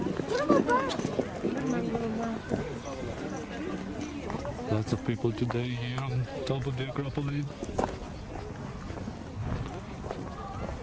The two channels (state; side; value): identical; both; correlation 1.00